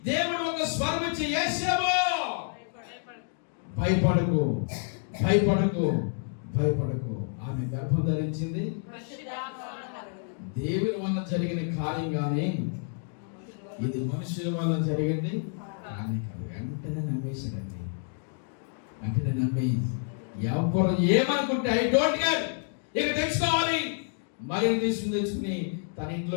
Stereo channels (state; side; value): silent; right; 59 dB below the other